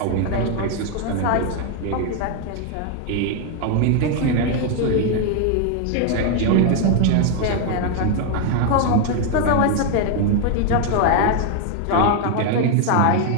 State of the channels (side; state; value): both; different; correlation 0.00